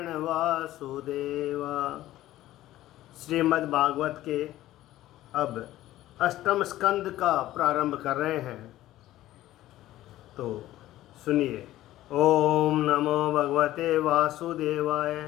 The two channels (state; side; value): quieter; right; 14.8 dB